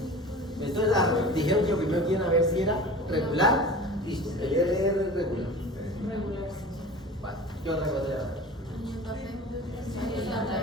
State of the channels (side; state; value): both; normal; correlation 0.38